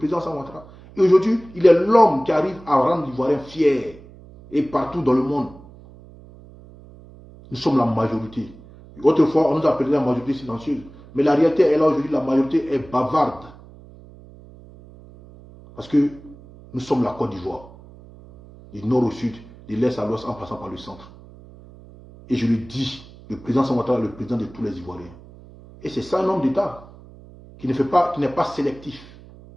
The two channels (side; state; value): right; noise; hum, 21 dB below the sound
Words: Ouattara. Et aujourd'hui, il est l'homme qui arrive à rendre l'Ivoirien fier. Et partout dans le monde. Nous sommes la majorité. Autrefois, on nous appelait la majorité silencieuse. Mais la réalité est là aujourd'hui, la majorité est bavarde. Parce que nous sommes la Côte d'Ivoire. Du nord au sud, de l'est à l'ouest, en passant par le centre. Et je le dis, le président Ouattara est le président de tous les Ivoiriens. Et c'est ça un homme d'État qui n'est pas sélectif.